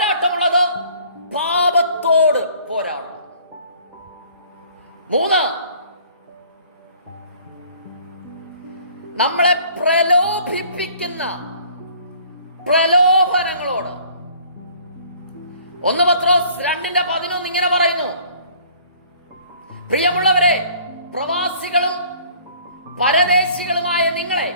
പാപത്തോട് പോരാടണം. 3, നമ്മളെ പ്രലോഭിപ്പിക്കുന്ന പ്രലോഭനങ്ങളോട്. 1 പത്രോസ് 2:11 ഇങ്ങനെ പറയുന്നു: പ്രിയമുള്ളവരെ, പ്രവാസികളും പരദേശികളുമായ നിങ്ങളെ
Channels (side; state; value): both; inverted; correlation -0.54